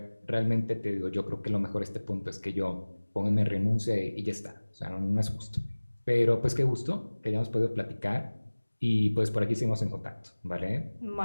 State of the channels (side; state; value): both; inverted; correlation -1.00